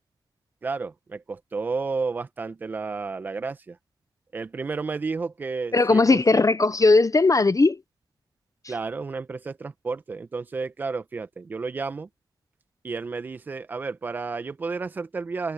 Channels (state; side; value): normal; both; correlation 0.80